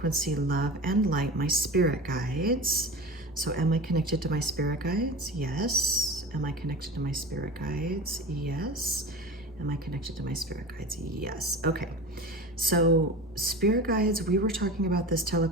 love, and light, my spirit guides. So am I connected to my spirit guides? Yes. Am I connected to my spirit guides? Yes. Am I connected to my spirit guides? Yes. Okay. So spirit guides, we were talking about this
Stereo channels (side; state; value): both; normal; correlation 0.32